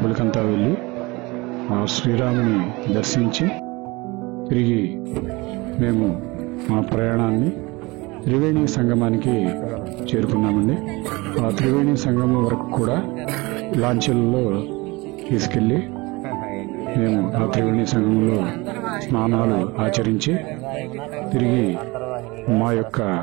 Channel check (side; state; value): left; quieter; 23.8 dB